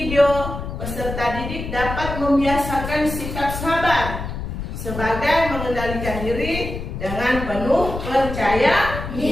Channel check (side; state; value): left; noise; rumble, 7 dB below the sound